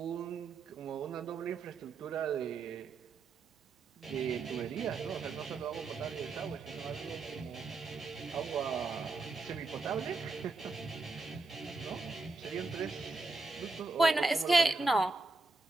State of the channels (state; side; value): quieter; left; 3.6 dB